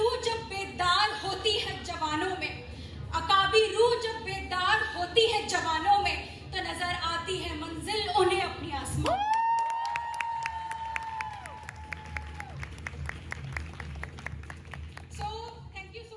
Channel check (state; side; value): identical; both; correlation 1.00